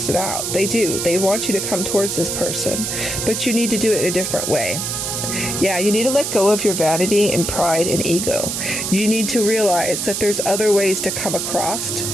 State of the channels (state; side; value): noise; right; hiss, 2 dB below the sound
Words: out. They do. They want you to come towards this person. But you need to do it in a different way. Yeah, you need to let go of your vanity and pride and ego. You need to realize that there's other ways to come across.